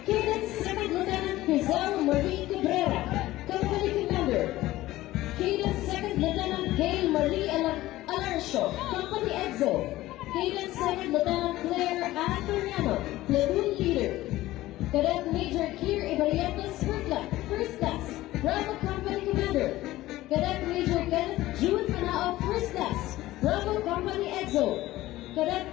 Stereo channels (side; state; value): right; quieter; 16.5 dB